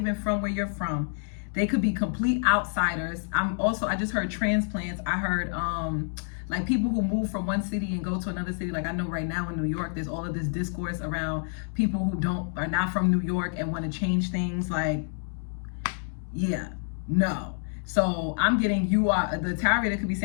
from where you're from. They could be complete outsiders. I just heard transplants. I heard like people who move from one city and go to another city. Like, I know right now in New York, there's all of this discourse around people who are not from New York and want to change things. Like, yeah, no. So I'm getting, the tarot reader could be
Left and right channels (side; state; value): right; silent; 59 dB below the other